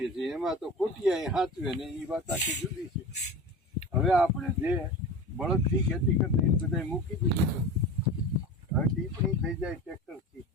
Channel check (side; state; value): both; normal; correlation 0.32